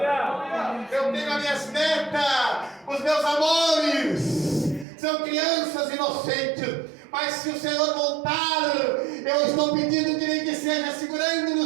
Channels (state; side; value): drops out; left; at 4.9 s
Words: Eu tenho as minhas netas, os meus amores, são crianças inocentes, mas se o Senhor voltar, eu estou pedindo que nem que seja segurando no